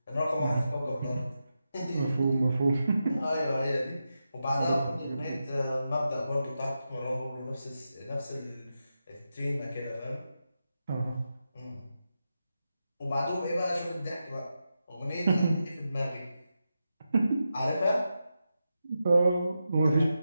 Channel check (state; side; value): inverted; both; correlation -0.88